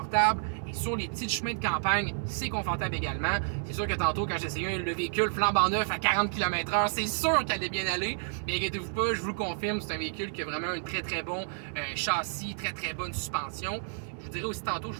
Et sur les petits chemins de campagne, c'est confortable également. C'est sûr que tantôt, quand j'essayais le véhicule flambant neuf à 40 km/h, c'est sûr qu'elle allait bien aller. Mais inquiétez-vous pas, je vous le confirme, c'est un véhicule qui a vraiment un très bon châssis, très bonne suspension. Je vous dirais aussi tantôt, je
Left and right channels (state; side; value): silent; left; 58 dB below the other